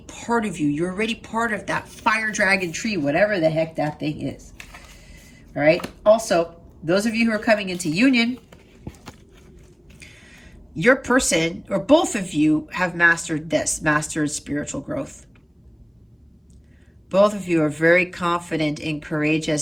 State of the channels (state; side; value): identical; both; correlation 1.00